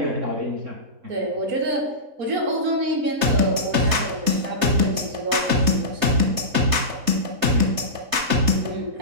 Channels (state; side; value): late; left; 3.3 ms